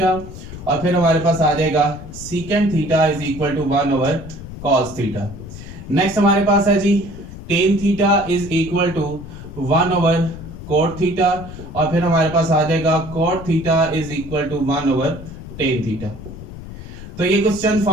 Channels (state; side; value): noise; left; rumble, 13 dB below the sound